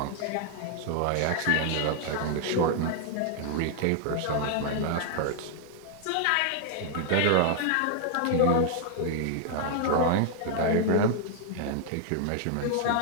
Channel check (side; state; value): both; different; correlation 0.00